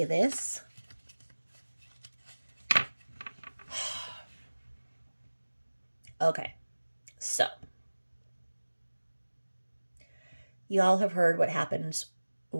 this, okay, so y'all have heard what happens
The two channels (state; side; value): inverted; both; correlation -1.00